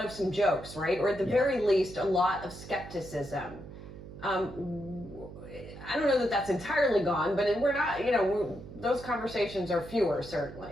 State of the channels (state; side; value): noise; right; hum, 14 dB below the sound